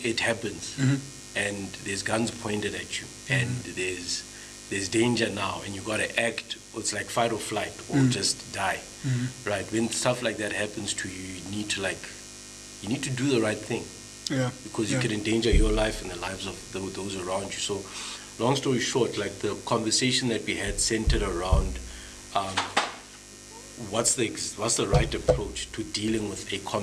happens and there's guns pointed at you and there's danger now, and you got to act, it's like fight or flight or just die, right? When stuff like that happens to you, you need to do the right thing. Yeah. Because you could endanger your life and the lives of those around you. So, long story short, like the conversation that we had centered around what's the right approach to dealing with a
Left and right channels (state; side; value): identical; both; correlation 1.00